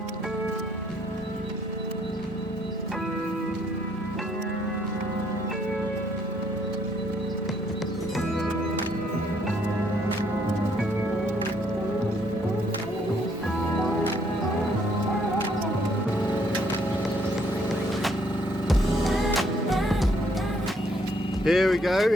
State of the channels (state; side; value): normal; both; correlation 0.68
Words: Here we go,